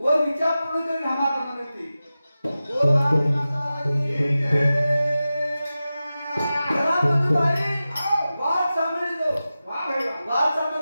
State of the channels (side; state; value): both; inverted; correlation -0.94